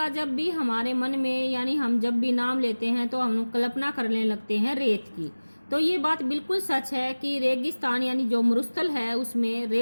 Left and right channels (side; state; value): both; inverted; correlation -1.00